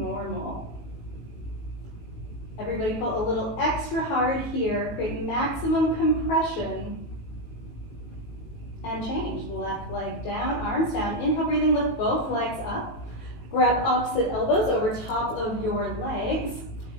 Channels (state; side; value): late; right; 18 ms